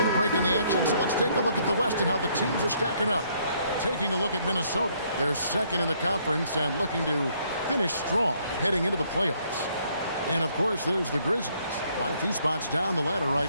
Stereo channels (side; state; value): both; inverted; correlation -0.67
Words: Break in the action, so let's take a look at the West and how the teams are stacking up. Taking a look at Minnesota. They're second in the conference and looking to finish strong heading into the playoffs. And, of course, there's the Grizzlies. Quite a few spots down the ladder